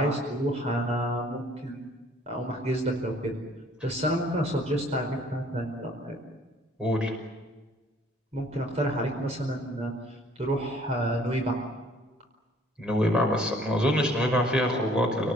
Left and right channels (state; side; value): normal; both; correlation 0.58